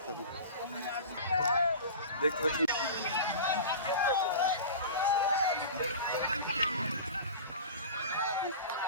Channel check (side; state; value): both; inverted; correlation -0.34